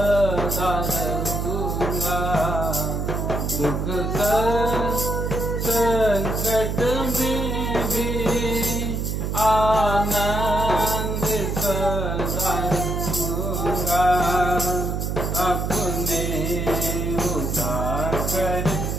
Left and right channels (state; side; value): noise; right; hum, 1 dB below the sound